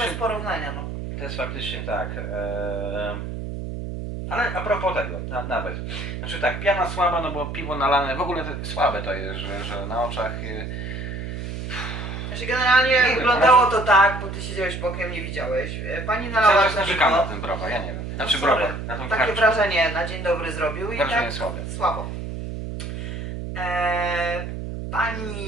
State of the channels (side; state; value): right; noise; hum, 6 dB below the sound